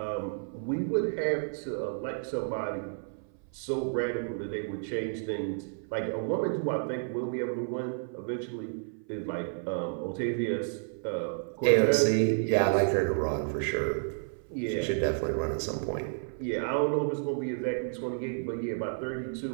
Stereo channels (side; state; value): left; silent; 57 dB below the other